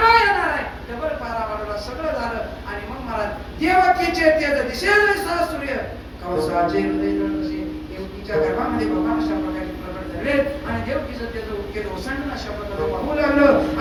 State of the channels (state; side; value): identical; both; correlation 1.00